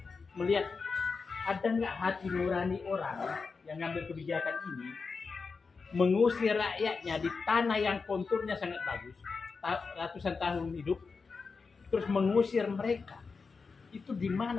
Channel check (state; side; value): quieter; right; 4.8 dB